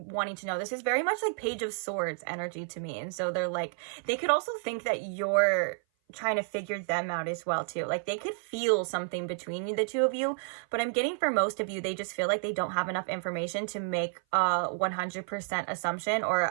to know. This is very much like Page of Swords energy to me. And so they're like, they could also think that you're trying to figure them out as well too. Like they could feel something between the two of you, but I'm getting for most of you, they just feel like they don't have enough information to make a 100% assumption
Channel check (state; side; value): silent; left; 55 dB below the other